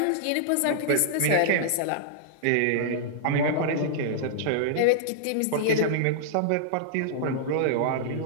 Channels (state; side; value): different; both; correlation -0.01